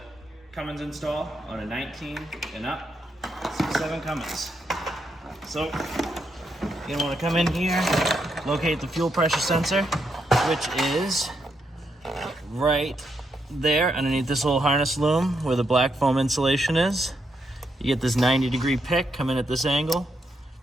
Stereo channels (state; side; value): normal; both; correlation 0.80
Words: Cummins install on a 19 and up, 6.7 Cummins. So, you're gonna wanna come in here, locate the fuel pressure sensor, which is right there underneath this little harness loom where the black foam insulation is. You get this 90-degree pick, come in at this angle,